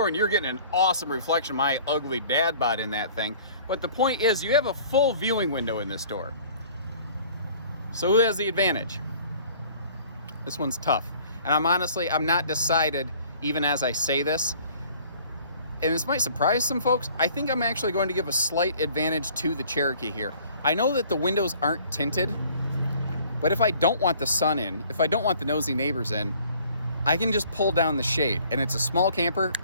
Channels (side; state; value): both; inverted; correlation -0.53